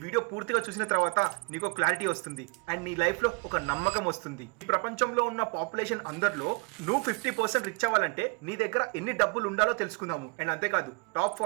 వీడియో పూర్తిగా చూసిన తర్వాత నీకు క్లారిటీ వస్తుంది అండ్ నీ లైఫ్ లో ఒక నమ్మకం వస్తుంది. ఈ ప్రపంచంలో ఉన్న పాపులేషన్ అందరిలో నువ్వు 50% రిచ్ అవ్వాలంటే నీ దగ్గర ఎన్ని డబ్బులు ఉండాలో తెలుసుకుందాము. అండ్ అంతేకాదు top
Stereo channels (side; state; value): left; quieter; 32.1 dB